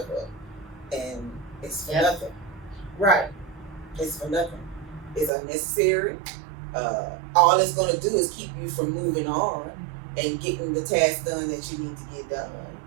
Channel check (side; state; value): left; drops out; at 5.3 s